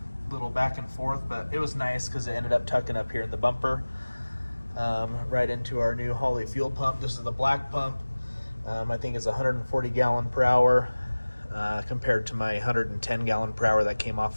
little back and forth, but it was nice because it ended up tucking up here in the bumper, right into our new Holley fuel pump. This is the black pump. I think it's 140 gallon per hour compared to my 110 gallon per hour that came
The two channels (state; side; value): inverted; both; correlation -1.00